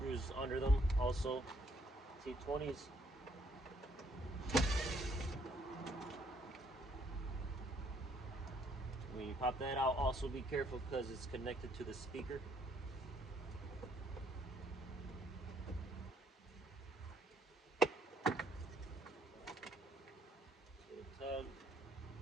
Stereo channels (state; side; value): normal; both; correlation 0.68